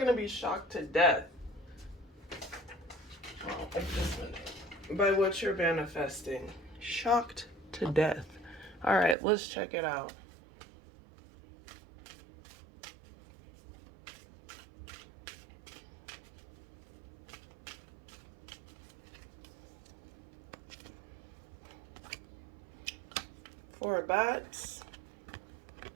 to be shocked to death by what you're manifesting. Shocked to death. All right, let's check it out. Four bats,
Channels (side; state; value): left; drops out; at 9.2 s